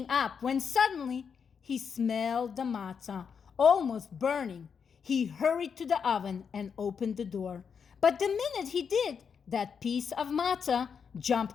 up when suddenly he smelled the matzah, almost burning. He hurried to the oven and opened the door. But the minute he did, that piece of matzah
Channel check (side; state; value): right; quieter; 6.5 dB